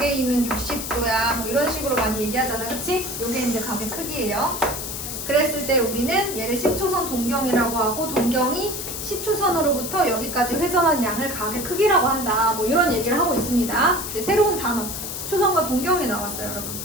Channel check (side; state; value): left; noise; hiss, 6 dB below the sound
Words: 있는 60도야 뭐 이런 식으로 많이 얘기하잖아, 그치? 요게 이제 각의 크기예요. 그랬을 때 우리는 얘를 시초선 동경이라고 하고 동경이 시초선으로부터 여기까지 회전한 양을 각의 크기라고 한다, 뭐 이런 얘기를 하고 있습니다. 이제 새로운 단어 시초선과 동경이 나왔어요, 여러분.